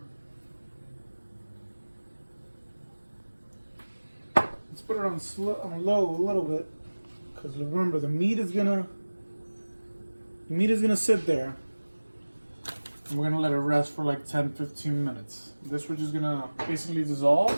Let's put it on low a little bit, because remember the meat is gonna sit there, and we're gonna let it rest for like 10-15 minutes. This we're just gonna basically dissolve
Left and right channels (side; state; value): both; inverted; correlation -1.00